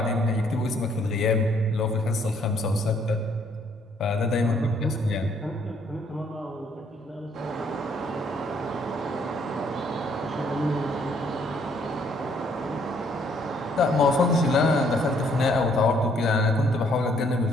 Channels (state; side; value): normal; both; correlation 0.66